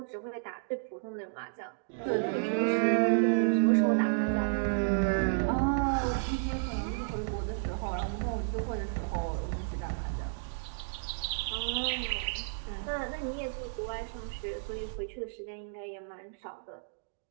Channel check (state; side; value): silent; left; digital silence